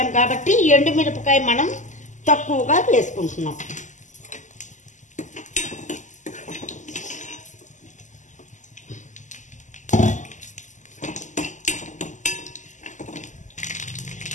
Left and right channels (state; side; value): late; right; 0.36 ms